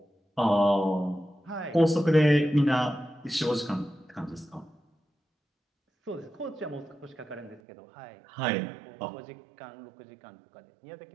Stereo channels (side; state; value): left; drops out; at 7.6 s